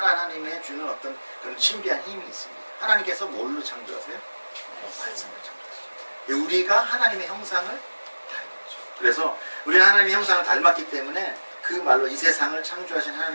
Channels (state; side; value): inverted; both; correlation -1.00